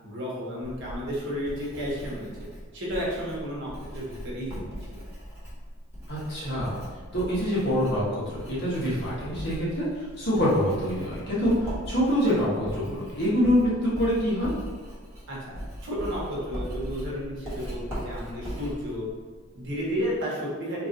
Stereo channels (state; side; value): normal; both; correlation 0.52